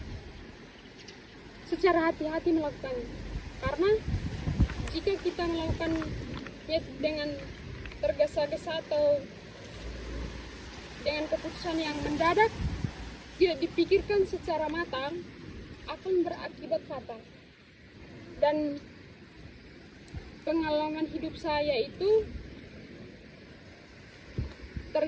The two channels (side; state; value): both; identical; correlation 1.00